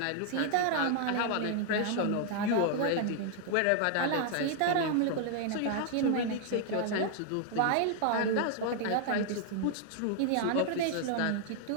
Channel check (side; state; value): both; different; correlation 0.00